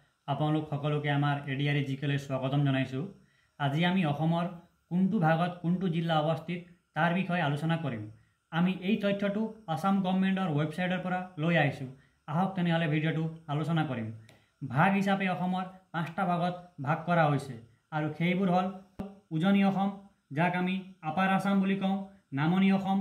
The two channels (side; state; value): both; identical; correlation 1.00